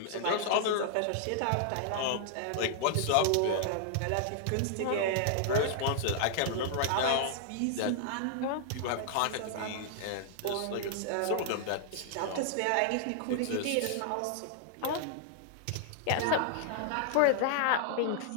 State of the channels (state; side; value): different; both; correlation -0.01